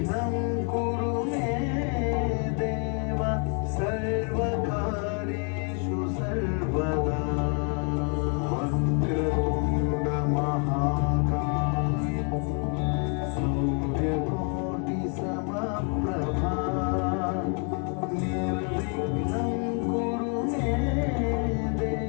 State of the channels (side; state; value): right; quieter; 39.9 dB